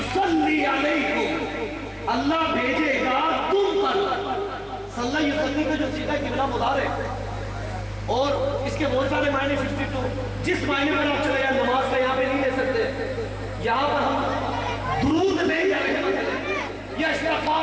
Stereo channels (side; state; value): both; identical; correlation 1.00